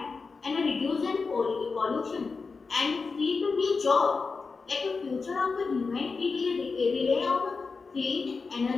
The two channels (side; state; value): right; quieter; 4.5 dB